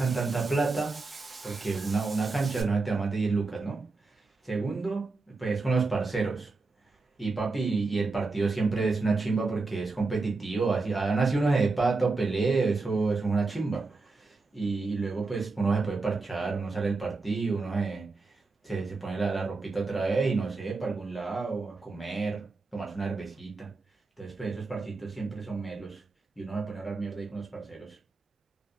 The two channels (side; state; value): left; quieter; 3.8 dB